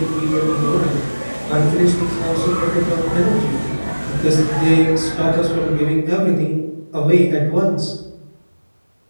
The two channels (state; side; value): inverted; both; correlation -1.00